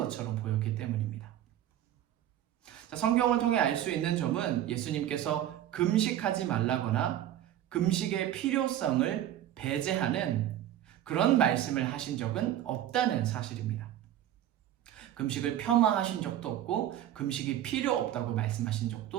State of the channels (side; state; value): left; quieter; 11.9 dB